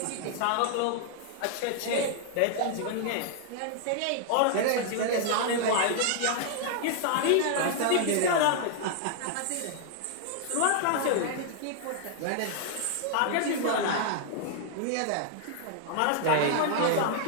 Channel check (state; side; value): different; both; correlation 0.00